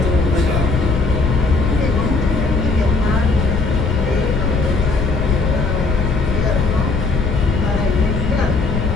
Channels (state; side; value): noise; left; rumble, 1 dB below the sound